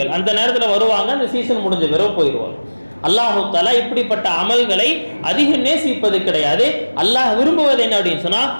அந்த நேரத்தில் வருவாங்க, அந்த சீசன் முடிஞ்ச பிறகு போயிடுவாங்க. அல்லாஹு தஆலா இப்படிப்பட்ட அமல்களை அதிகம் நேசிப்பது கிடையாது. அல்லாஹ் விரும்புவது என்ன அப்படின்னு சொன்னா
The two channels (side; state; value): both; inverted; correlation -1.00